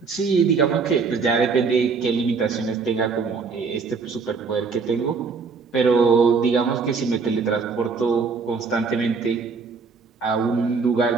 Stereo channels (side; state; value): left; quieter; 4.9 dB